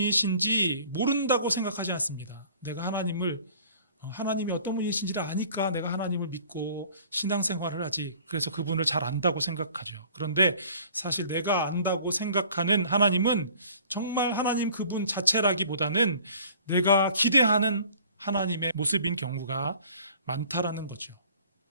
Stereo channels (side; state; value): both; inverted; correlation -0.51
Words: 모른다고 생각하지 않습니다. 내가 하나님이 어떤 분이신지를 아니까 내가 하나님을 믿고 신앙생활을 하지. 그래서 그분을 잘 안다고 생각하죠. 그런데 사실 내가 안다고 생각하는 하나님은 정말 하나님 그분 자체라기보다는 내가 기대하는 하나님의 모습인 경우가 많다라는 거죠.